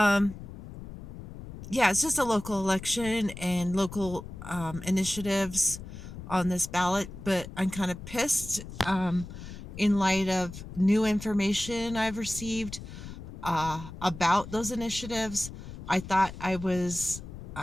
yeah, it's just a local election and local initiatives on this ballot, but I'm kind of pissed in light of new information I've received about those initiatives. I thought I was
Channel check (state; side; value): noise; left; rumble, 12 dB below the sound